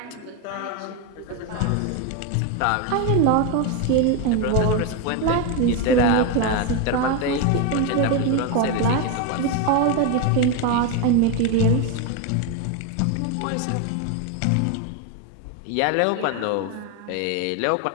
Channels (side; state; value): both; different; correlation 0.02